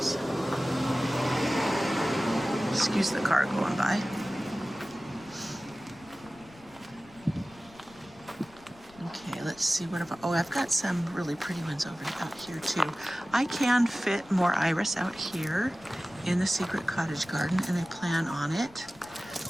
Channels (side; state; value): left; noise; rumble, 25 dB below the sound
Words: Excuse the car going by. Let's see what I've got some really pretty ones over out here too. I can fit more iris out here in the secret cottage garden and I plan on it.